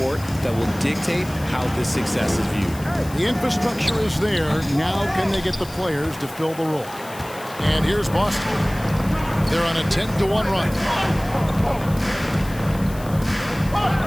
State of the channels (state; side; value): noise; left; hiss, 18 dB below the sound